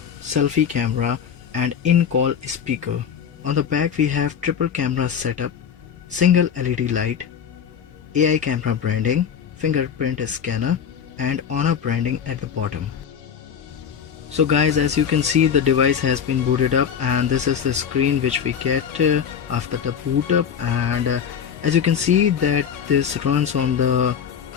selfie camera and in-call speaker. On the back we have triple camera setup, single LED light, AI camera branding, fingerprint scanner and Honor branding at the bottom. So guys, as you can see, the device has been booted up and this is the screen which we get after the boot up, and as you can see that this runs on the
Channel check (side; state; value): right; quieter; 7.8 dB